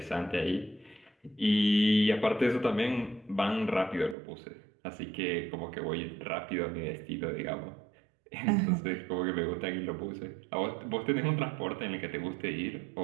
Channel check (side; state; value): left; drops out; at 4.2 s